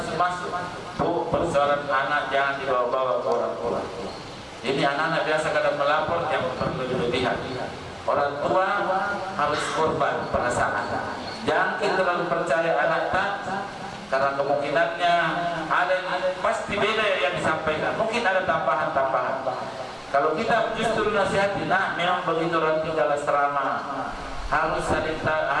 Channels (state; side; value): identical; both; correlation 1.00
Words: masuk, bu, persoalan anak jangan dibawa-bawa ke orang tua. Ini anak-anak biasa kadang melapor yang berlebihan. Orang tua harus korban perasaan. Jangan kita terlalu percaya anak tak, karena kemungkinannya ada pasti beda yang disampaikan. Mungkin ada tambahan-tambahan. Kalau kita justru nasihati, memang begitu orang tinggal asrama, harus